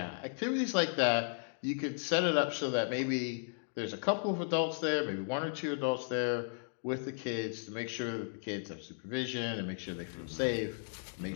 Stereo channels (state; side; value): silent; right; digital silence